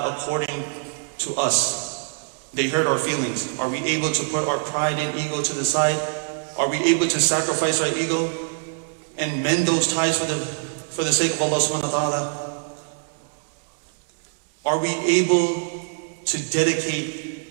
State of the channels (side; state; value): left; silent; digital silence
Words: according to us? They hurt our feelings. Are we able to put our pride and ego to the side? Are we able to sacrifice our ego and mend those ties for the sake of Allah subhanahu wa ta'ala? Are we able to dedicate